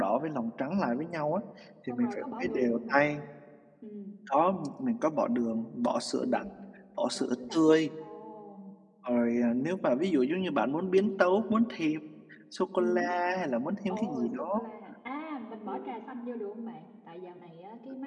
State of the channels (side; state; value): both; identical; correlation 1.00